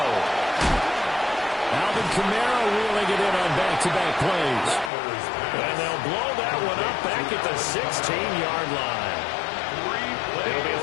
Alvin Kamara wheeling it in on back-to-back plays. And they'll blow that one up back at the 16-yard line. It'll be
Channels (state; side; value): drops out; right; at 4.9 s